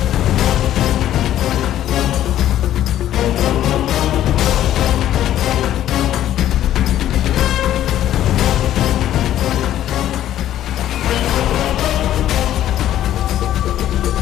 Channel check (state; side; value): quieter; right; 12.2 dB